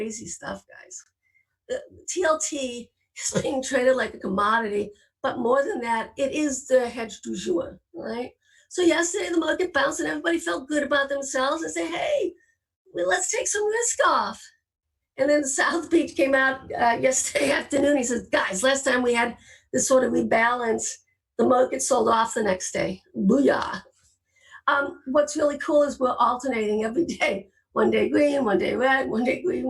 stuff, guys. The TLT is being traded like a commodity, but more than that, it is the hedge du jour, right? So yesterday the market bounced and everybody felt good about themselves and say, hey, well, let's take some risk off. And then South Beach came out yesterday afternoon. He says, guys, last time we had this sort of rebalance, The market sold off the next day. Booyah. What's really cool is we're alternating every day. One day green, one day red, one day green,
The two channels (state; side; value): identical; both; correlation 1.00